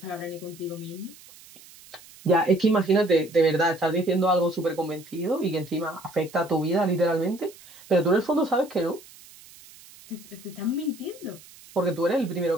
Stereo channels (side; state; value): right; noise; hiss, 22 dB below the sound